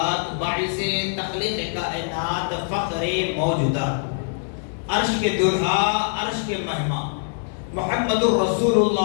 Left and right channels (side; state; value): right; silent; digital silence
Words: باعث تخلیق کائنات، فخر موجودات، عرش کے دلہا، عرش کے مہمان، محمد الرسول